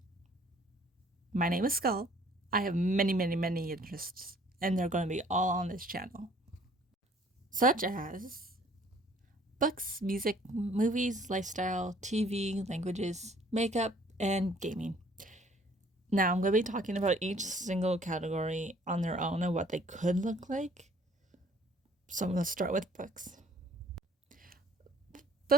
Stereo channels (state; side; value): normal; both; correlation 0.57